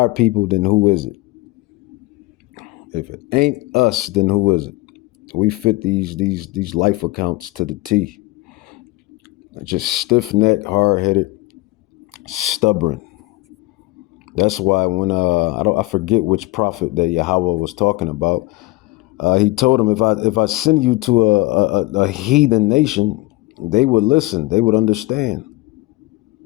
people, then who is it? If it ain't us, then who is it? We fit these life accounts to the T. Just stiff-necked, hard-headed, stubborn. That's why when I forget which prophet that Yahawah was talking about. He told him, if I send you to a heathen nation, they would listen, they would understand,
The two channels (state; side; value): quieter; right; 20.6 dB